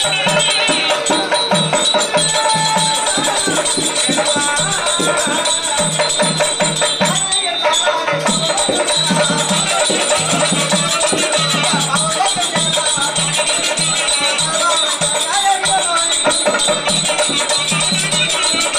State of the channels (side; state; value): both; identical; correlation 1.00